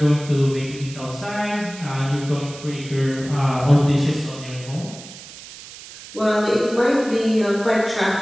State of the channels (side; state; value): right; noise; hiss, 16 dB below the sound